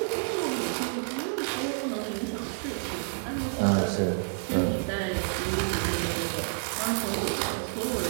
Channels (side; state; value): left; silent; digital silence